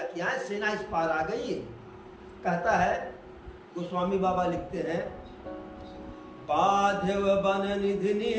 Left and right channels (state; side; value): identical; both; correlation 1.00